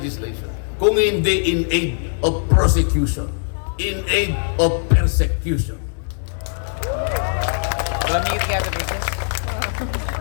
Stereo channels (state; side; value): silent; right; digital silence